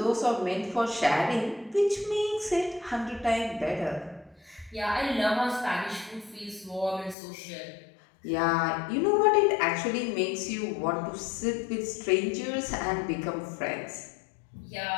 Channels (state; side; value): drops out; right; at 7.2 s